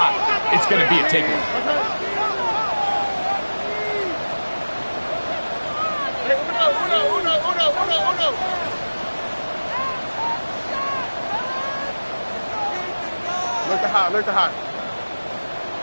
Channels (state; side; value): inverted; both; correlation -1.00